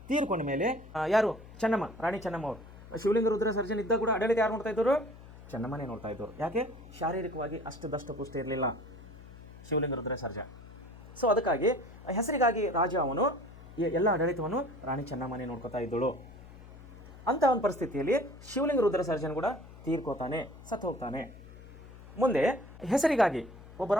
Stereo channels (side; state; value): left; noise; hum, 17 dB below the sound